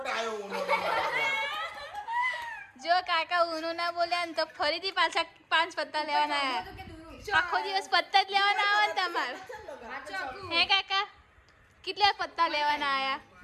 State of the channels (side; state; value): both; identical; correlation 1.00